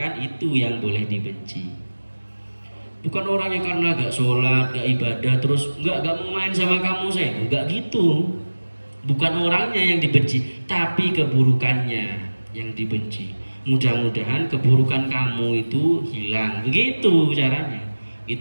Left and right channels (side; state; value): both; inverted; correlation -1.00